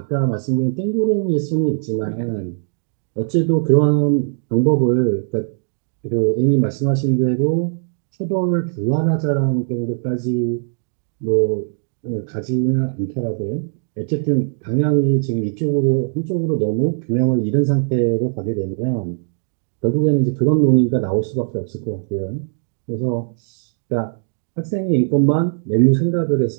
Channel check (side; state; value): left; silent; digital silence